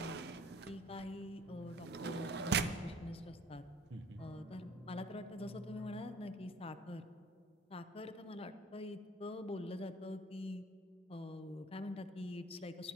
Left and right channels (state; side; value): normal; both; correlation 0.52